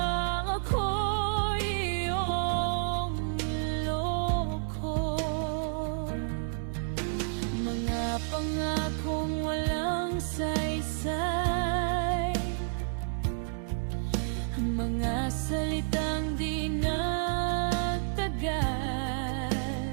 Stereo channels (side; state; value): left; silent; 58 dB below the other